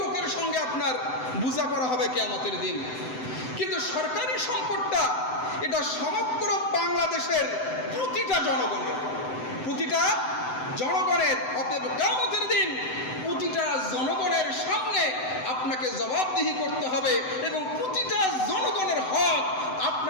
লোকের সঙ্গে আপনার বোঝাপড়া হবে কিয়ামতের দিন, কিন্তু সরকারি সম্পদটা এটা সমগ্র বাংলাদেশের প্রতিটা জনগণের, অতএব কিয়ামতের দিন প্রতিটা জনগণের সামনে আপনাকে জবাবদিহি করতে হবে এবং প্রতিটা জনগণের হক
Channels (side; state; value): right; late; 7.9 ms